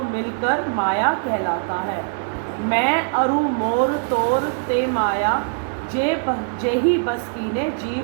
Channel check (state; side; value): silent; left; digital silence